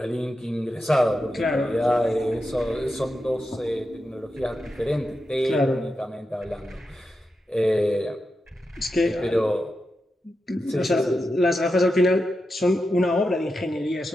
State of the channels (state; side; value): normal; both; correlation 0.89